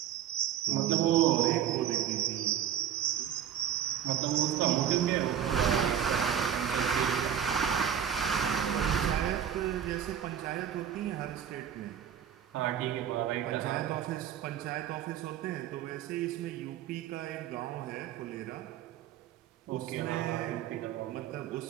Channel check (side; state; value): left; quieter; 9.6 dB